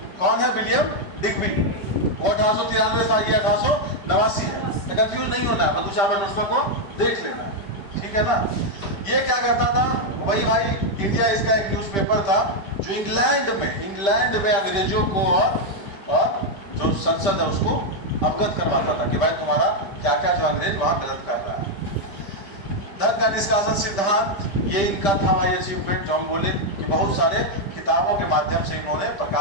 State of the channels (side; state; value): right; late; 5.1 ms